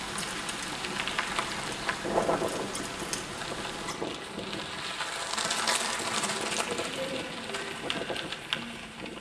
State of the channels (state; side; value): identical; both; correlation 1.00